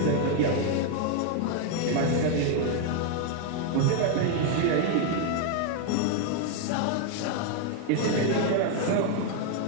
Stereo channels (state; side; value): different; both; correlation 0.01